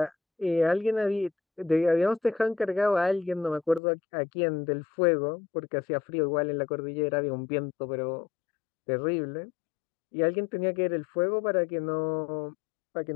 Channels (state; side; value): drops out; right; at 3.8 s